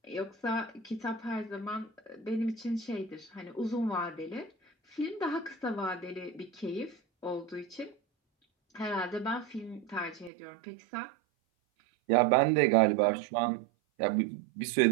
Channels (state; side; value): drops out; left; at 10.3 s